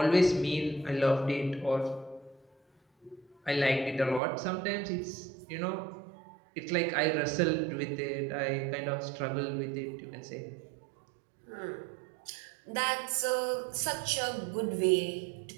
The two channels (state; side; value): drops out; left; at 4.2 s